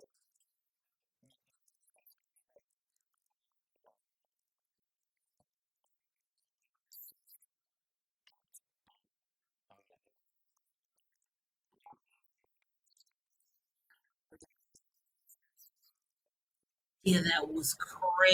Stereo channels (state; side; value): identical; both; correlation 1.00